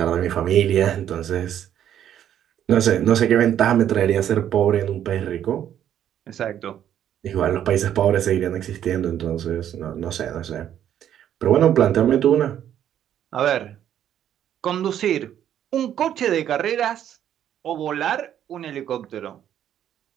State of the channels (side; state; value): left; quieter; 10.4 dB